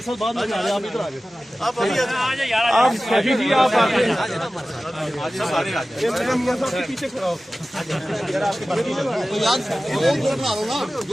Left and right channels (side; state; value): both; normal; correlation 0.96